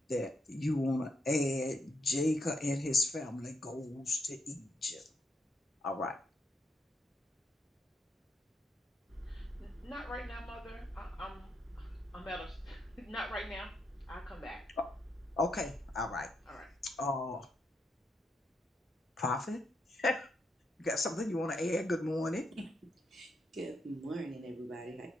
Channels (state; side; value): normal; both; correlation 0.80